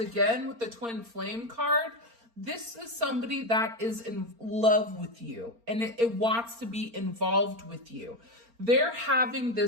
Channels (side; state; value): left; late; 4.3 ms